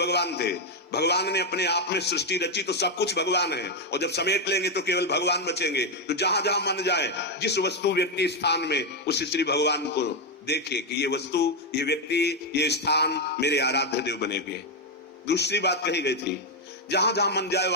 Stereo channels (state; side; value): normal; both; correlation 0.04